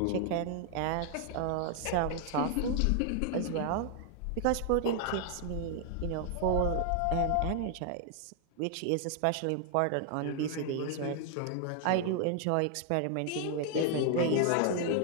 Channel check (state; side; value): different; both; correlation 0.00